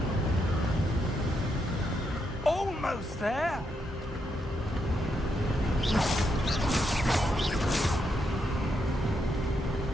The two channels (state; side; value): normal; both; correlation 0.80